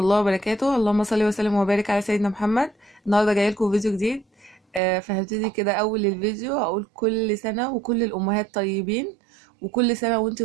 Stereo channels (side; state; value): left; drops out; at 4.8 s